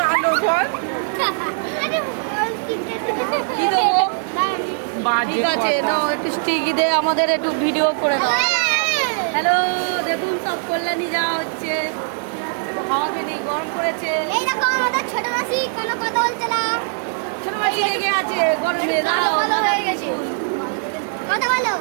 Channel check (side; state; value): left; silent; digital silence